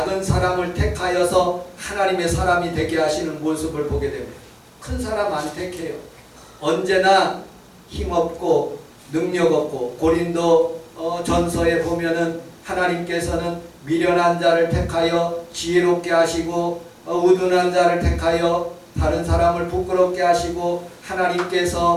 사람을 택하여서 하나님의 사람이 되게 하시는 모습을 보게 됩니다. 큰 사람 안 택해요. 언제나 힘없고 능력 없고 고린도 전서에 보면은 하나님께서는 미련한 자를 택하여 지혜롭게 하시고 우둔한 자를 택하여 다른 사람을 부끄럽게 하시고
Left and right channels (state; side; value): identical; both; correlation 1.00